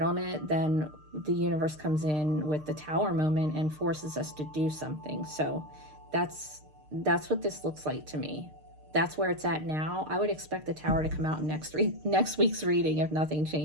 it, then the universe comes in with the Tower moment and forces us to do something. So that's what this looks like to me. That's where it's at now. I would expect the Tower to come out in next week's reading if nothing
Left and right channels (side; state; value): left; late; 6.6 ms